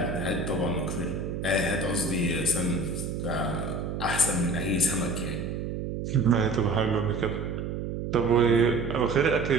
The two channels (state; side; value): noise; right; hum, 4 dB below the sound